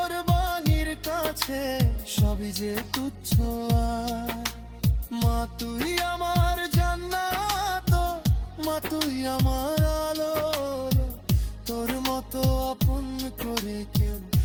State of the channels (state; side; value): identical; both; correlation 1.00